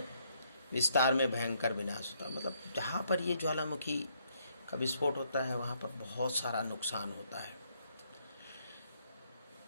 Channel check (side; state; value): both; inverted; correlation -0.71